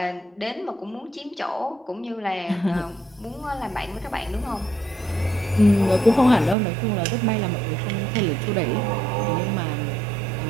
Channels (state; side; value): drops out; left; at 6.6 s